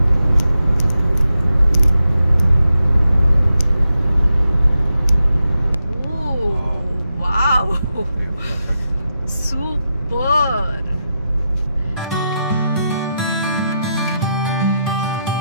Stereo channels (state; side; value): inverted; both; correlation -0.87